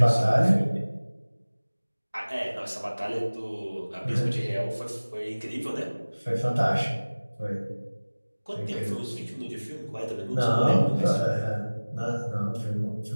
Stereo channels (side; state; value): both; inverted; correlation -1.00